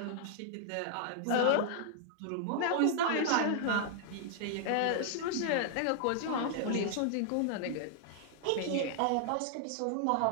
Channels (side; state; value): both; different; correlation -0.01